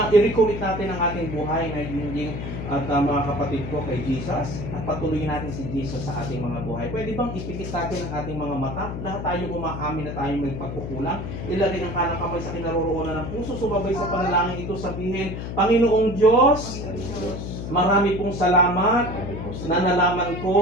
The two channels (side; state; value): left; noise; hum, 6 dB below the sound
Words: i-recommit natin ang ating buhay na hinging at mga kapatid ko kay Jesus at patuloyin natin si Jesus sa ating mga buhay. Pwede bang ipikit natin ang ating mga mata? Lahat tayo umaamin na tayo may pagkukulang. Ilagay ang kanang kamay sa kinaroroonan ng puso. Sumabay sa panalangin ito, sabihin, Panginoong Diyos, marami pong salamat na nalaman